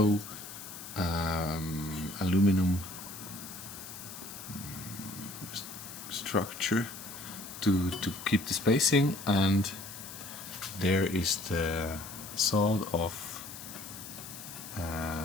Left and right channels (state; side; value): noise; left; hiss, 12 dB below the sound